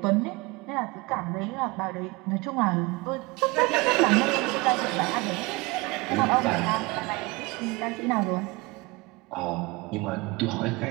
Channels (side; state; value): left; quieter; 24.6 dB